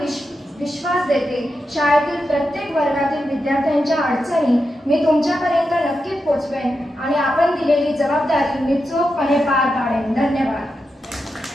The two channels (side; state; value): both; normal; correlation 0.88